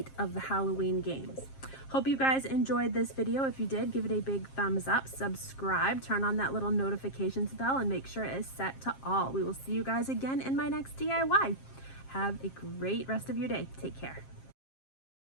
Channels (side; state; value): right; late; 7.5 ms